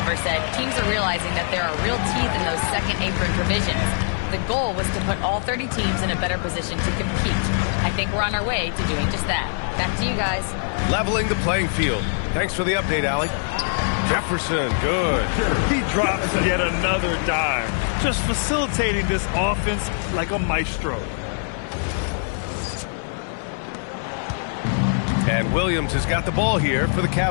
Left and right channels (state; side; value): silent; right; 64 dB below the other